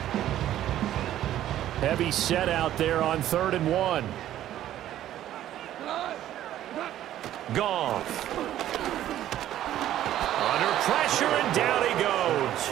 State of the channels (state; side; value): quieter; left; 12.5 dB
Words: Heavy set out there on 3rd and 1. Goff. Under pressure, and down he goes.